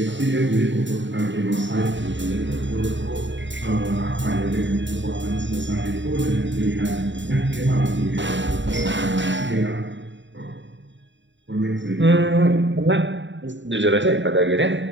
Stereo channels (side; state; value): left; late; 0.54 ms